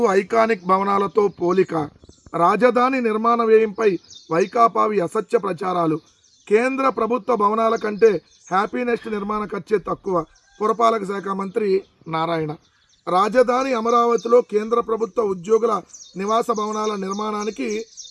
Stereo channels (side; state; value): both; identical; correlation 1.00